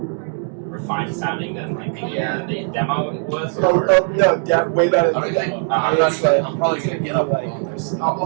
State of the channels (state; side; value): silent; left; 57 dB below the other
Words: sounding than like the demo was? No, way better than the demo. I'm probably gonna get up